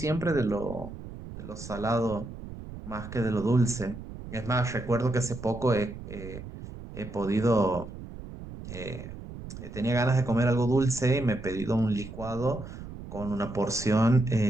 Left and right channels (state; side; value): noise; right; rumble, 12 dB below the sound